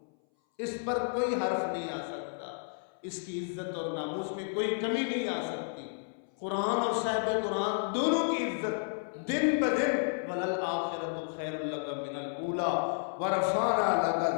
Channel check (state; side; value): silent; right; 57 dB below the other